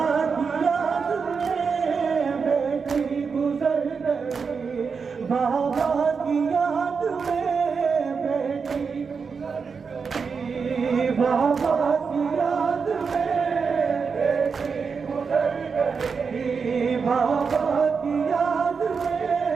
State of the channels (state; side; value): quieter; left; 5.5 dB